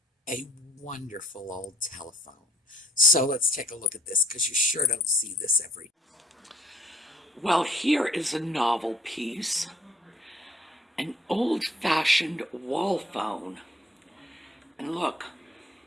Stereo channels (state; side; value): normal; both; correlation 0.60